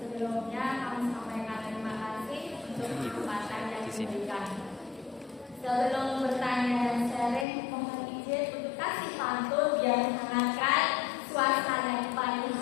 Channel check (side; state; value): right; drops out; at 7.5 s